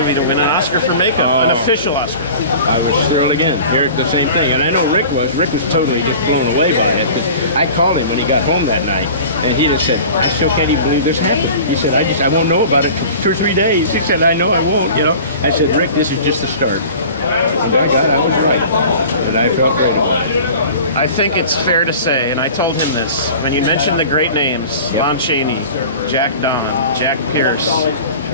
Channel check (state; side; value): inverted; both; correlation -0.41